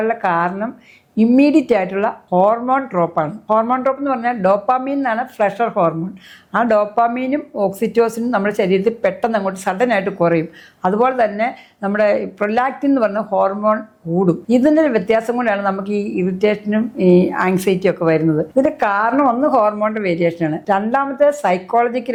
കാരണം ഇമ്മീഡിയറ്റ് ആയിട്ടുള്ള ഹോർമോൺ ഡ്രോപ്പാണ്. ഹോർമോൺ ഡ്രോപ്പ് എന്ന് പറഞ്ഞാൽ ഡോപ്പാമീൻ എന്നാണ് പ്ലഷർ ഹോർമോൺ. ആ ഡോപ്പാമീനും ഓക്സിറ്റോസിനും നമ്മുടെ ശരീരത്തിൽ പെട്ടെന്ന് അങ്ങോട്ട് സഡനായിട്ട് കുറയും. അതുപോലെ തന്നെ നമ്മുടെ പ്രൊലാക്റ്റിൻ എന്ന് പറഞ്ഞ ഹോർമോൺ കൂടും. ഇതിൻ്റെ ഒരു വ്യത്യാസം കൊണ്ടാണ് നമുക്ക് ഈ ഇറിറ്റേഷനും ഈ ആങ്സൈറ്റിയും ഒക്കെ വരുന്നത്. ഇതിന്റെ കാരണം ഒന്ന് ഹോർമോണിന്റെ വേരിയേഷനാണ്, രണ്ടാമത്തെ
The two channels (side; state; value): both; identical; correlation 1.00